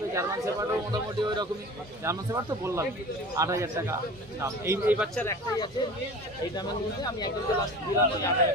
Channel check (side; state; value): both; normal; correlation 0.38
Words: জার্মান শেপার্ডও মোটামুটি ওই রকমই। জার্মান শেপার্ড তো বললাম 8,000 টাকা দাম। এই বাচ্চার একটাই আছে, এই দামের মধ্যে আমি একজনকে লাস্ট দিলাম